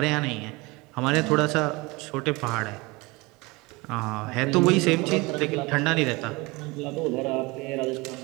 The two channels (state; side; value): quieter; left; 24.2 dB